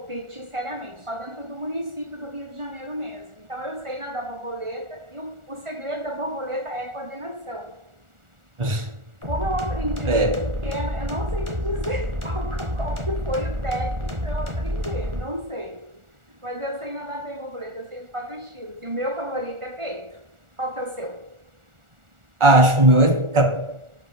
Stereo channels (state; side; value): late; left; 1.4 ms